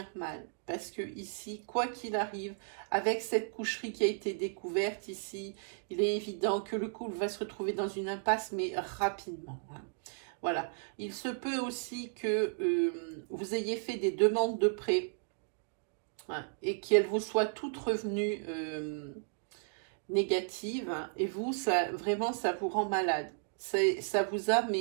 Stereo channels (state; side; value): silent; left; digital silence